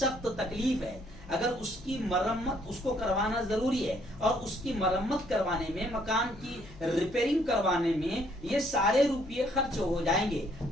तकलीफ है, अगर उसकी मरम्मत उसको करवाना जरूरी है और उसकी मरम्मत करवाने में, मकान की रिपेयरिंग करवाने में ये सारे रुपये खर्च हो जाएंगे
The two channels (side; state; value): left; noise; hum, 19 dB below the sound